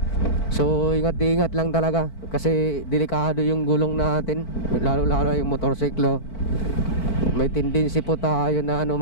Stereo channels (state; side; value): late; right; 4.5 ms